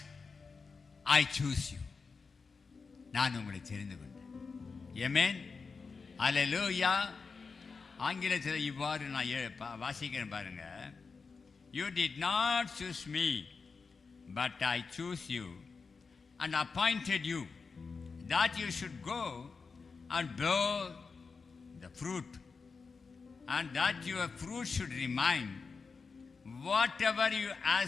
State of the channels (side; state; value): right; quieter; 4.8 dB